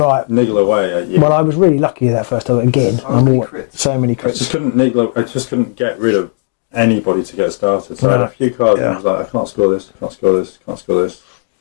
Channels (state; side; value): silent; right; digital silence